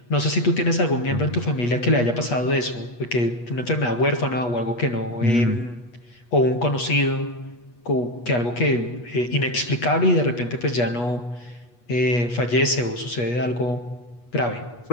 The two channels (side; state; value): right; late; 8.3 ms